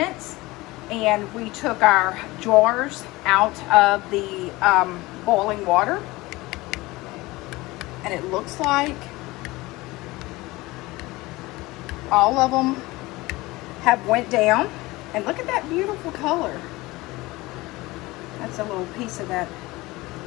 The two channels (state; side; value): quieter; right; 20.7 dB